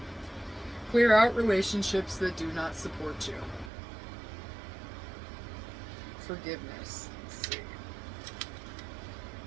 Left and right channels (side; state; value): left; drops out; at 3.7 s